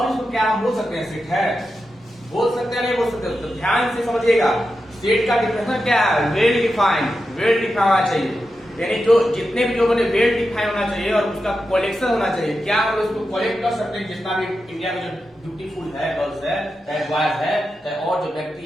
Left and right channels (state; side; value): normal; both; correlation 0.89